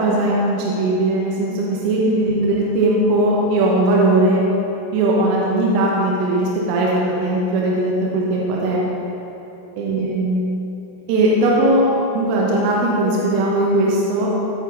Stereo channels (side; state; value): left; late; 27 ms